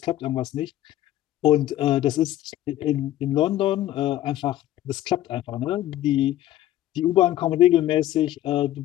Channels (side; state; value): right; quieter; 13.7 dB